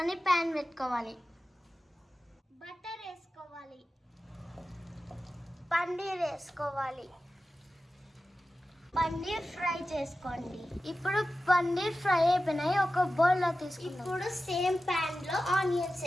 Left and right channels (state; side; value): normal; both; correlation 0.94